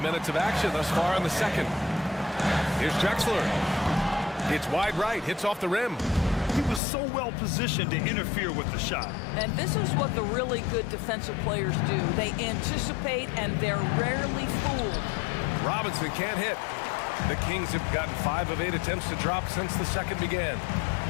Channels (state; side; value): drops out; right; at 6.8 s